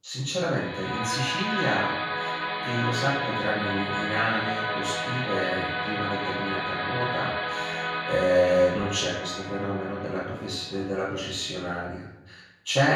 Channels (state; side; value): identical; both; correlation 1.00